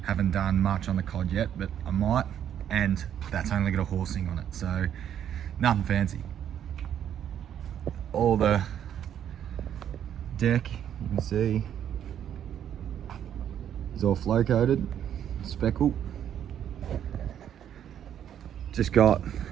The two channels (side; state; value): left; quieter; 9.7 dB